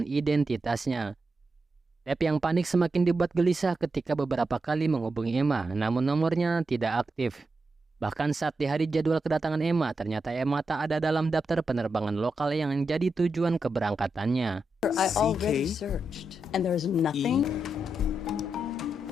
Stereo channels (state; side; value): normal; both; correlation 0.86